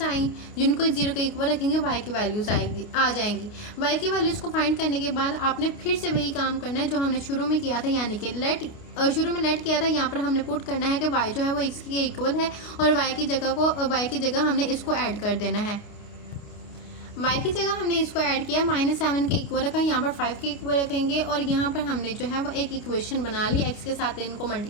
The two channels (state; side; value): late; right; 29 ms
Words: आई जिनको 0 के इक्वल रखेंगे, y की वैल्यूज आ जाएंगी। y की वैल्यूज को फाइंड करने के बाद आपने फिर से वही काम करना है जो हमने शुरू में किया था, यानी कि शुरू में लेट किया था। यहाँ पर हमने पुट करना है कि y जो है वो x के इक्वल है और y की जगह हमने इसको ऐड कर देना है। y की जगह हमने इसको ऐड किया, -7 के इक्वल रखा, यहाँ पर 5 के इक्वल रखेंगे और यहाँ पर हमने जो है वो एक इक्वेशन बना ली। x के साथ इनको